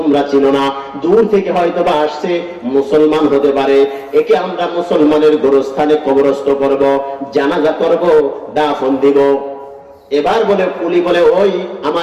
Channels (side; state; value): both; identical; correlation 1.00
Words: চিনো না, দূর থেকে হয়তো বা আসছে, মুসলমান হতে পারে, একে আমরা মুসলমানের গোরস্থানে কবরস্থ করব, জানাজা করব, দাফন দিব। এবার বলে পুলি বলে ওই